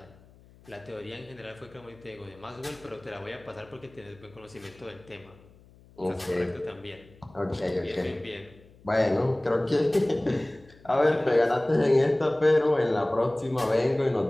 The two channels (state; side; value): noise; left; hum, 26 dB below the sound